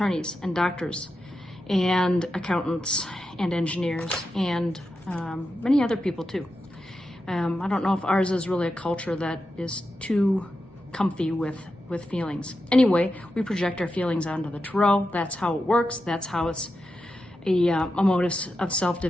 and doctors and accountants and engineers and many other people too. I don't know if ours is really a culture that is too comfy with feelings. Anyway, we project our feelings onto the Tarot. That's how it works. That's how it's a motive of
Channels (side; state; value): both; normal; correlation 0.89